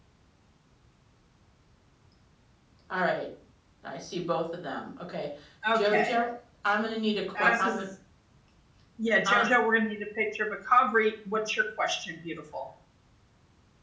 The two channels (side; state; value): both; identical; correlation 1.00